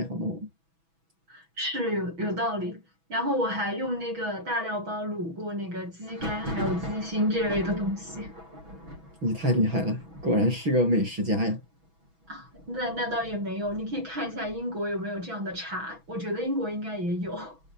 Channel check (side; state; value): left; late; 6.1 ms